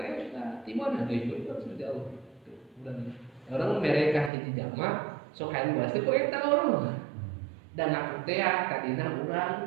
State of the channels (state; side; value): drops out; left; at 4.3 s